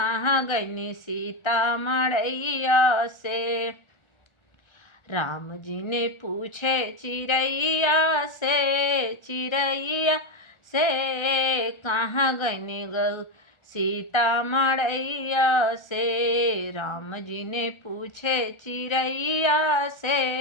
गई सीता मड़ैया से। राम जी ने पूछे चिड़ैया से कहाँ गई सीता मड़ैया से। राम जी ने पूछे चिड़ैया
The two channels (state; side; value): late; right; 1.4 ms